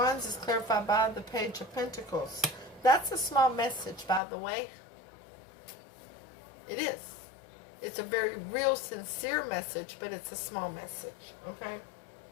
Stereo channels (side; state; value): right; drops out; at 4.2 s